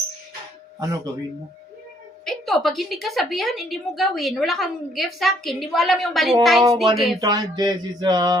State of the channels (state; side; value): normal; both; correlation 0.66